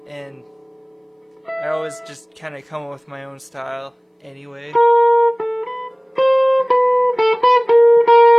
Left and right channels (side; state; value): both; identical; correlation 1.00